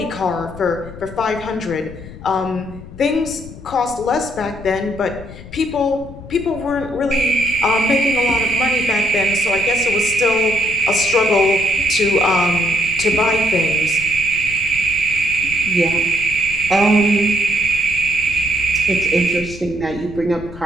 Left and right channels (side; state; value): left; noise; rumble, 15 dB below the sound